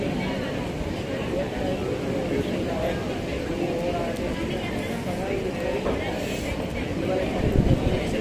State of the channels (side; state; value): both; identical; correlation 1.00